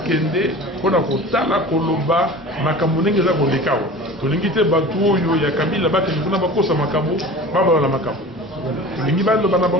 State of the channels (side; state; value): both; normal; correlation 0.38